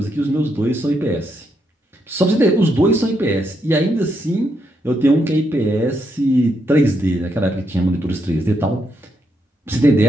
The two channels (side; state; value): both; normal; correlation 0.79